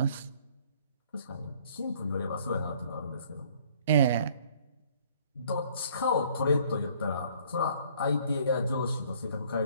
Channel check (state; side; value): inverted; both; correlation -0.59